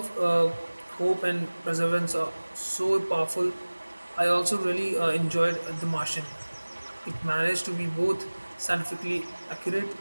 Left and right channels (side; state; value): both; inverted; correlation -1.00